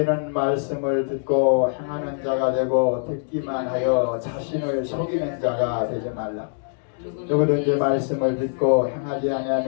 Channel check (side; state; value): right; silent; digital silence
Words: 말씀을 듣고 행하는 자가 되고 듣기만 하여 자신을 속이는 자가 되지 말라. 누구든지 말씀을 듣고 행하지